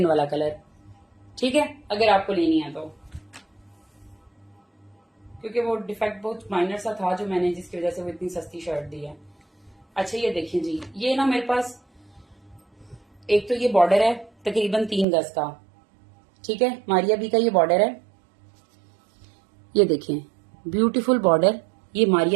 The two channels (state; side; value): drops out; left; at 15.1 s